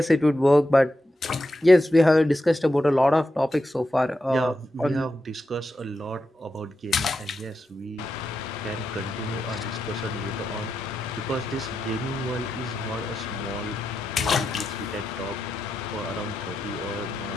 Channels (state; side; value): normal; both; correlation 0.88